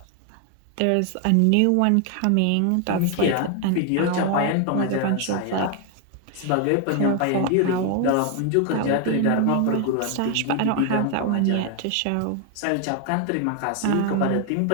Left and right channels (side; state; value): both; different; correlation 0.00